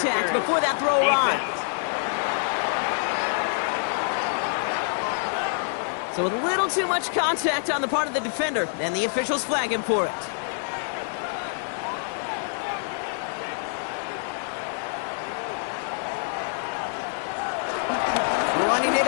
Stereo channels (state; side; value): silent; right; digital silence